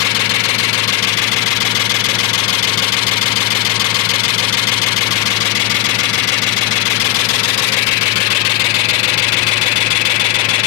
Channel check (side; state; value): right; quieter; 15.8 dB